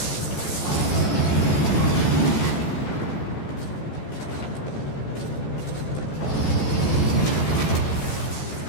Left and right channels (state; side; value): late; right; 14 ms